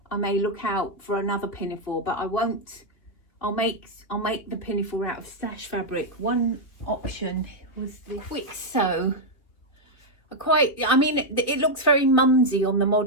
I may look out for another pinafore, but I won't I'll make the pinafore out of stash fabric. One option was the quick sew. I mean, it looks very mumsy on the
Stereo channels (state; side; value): late; right; 3.0 ms